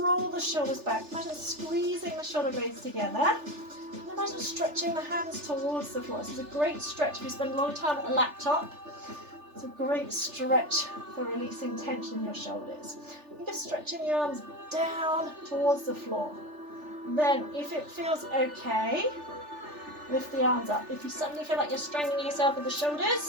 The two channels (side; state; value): left; late; 3.4 ms